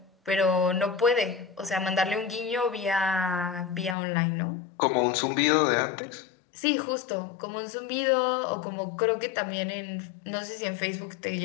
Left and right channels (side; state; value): right; drops out; at 4.0 s